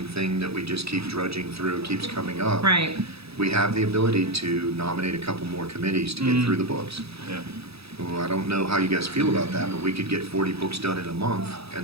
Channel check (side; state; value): left; late; 0.77 ms